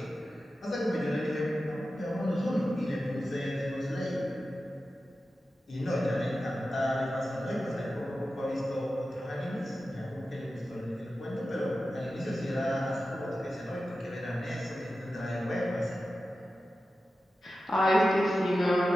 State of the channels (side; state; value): both; normal; correlation 0.93